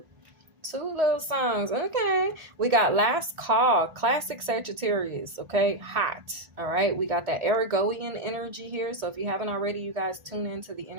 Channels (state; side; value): late; left; 1.8 ms